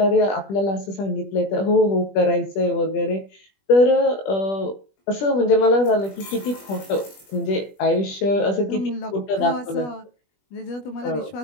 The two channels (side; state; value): right; late; 20 ms